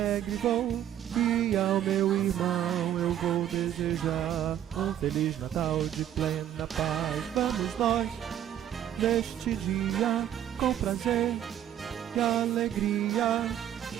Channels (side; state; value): left; quieter; 11.0 dB